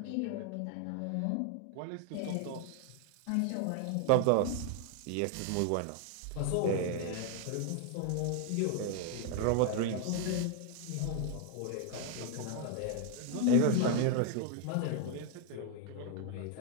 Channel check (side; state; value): both; different; correlation 0.00